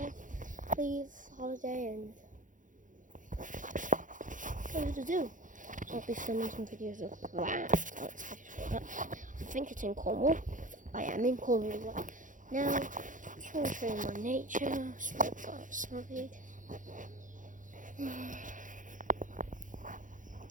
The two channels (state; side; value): late; left; 0.38 ms